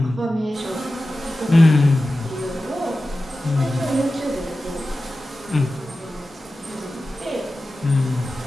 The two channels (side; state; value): both; normal; correlation 0.94